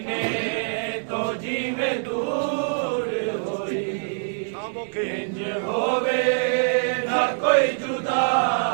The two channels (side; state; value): left; silent; digital silence